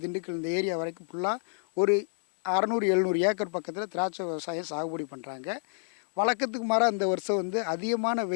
திண்டுக்கல் இந்த ஏரியா வரைக்கும் ஃபுல்லாக ஒரு 600-700 ஏக்கர் பக்கத்தில் திராட்சை விவசாயம் சாகுபடி பண்ணுறாங்க. வழக்கத்துக்கு மாறாக இந்த வருஷம் வந்து அதிகமான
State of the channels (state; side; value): silent; right; digital silence